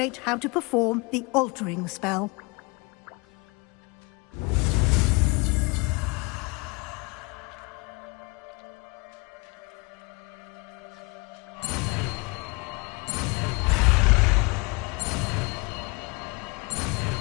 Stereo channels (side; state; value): right; quieter; 29.1 dB